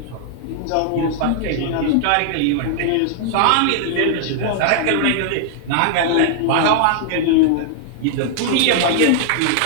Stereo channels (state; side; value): different; both; correlation -0.01